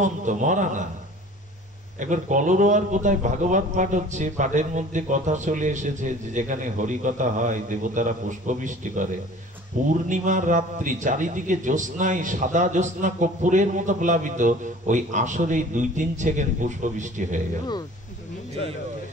মরা না। একবার কলরোয়ার কোথায় ভাগবত পাঠ হচ্ছে, পাঠের মধ্যে কথা চলে এসেছে যে যেখানে হরিকথা হয় দেবতারা পুষ্পবৃষ্টি করে। পূর্ণিমার রাত্রি, চারিদিকে জ্যোৎস্নায়, সাদা জ্যোৎস্না কর্পূরের মতো প্লাবিত, ওই আসরেই 2-3 সেকেন্ড পুষ্পবৃষ্টি হয়ে গেল।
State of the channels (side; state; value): both; normal; correlation 0.46